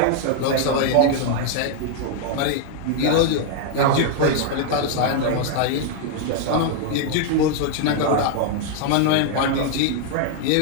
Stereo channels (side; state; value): both; different; correlation 0.00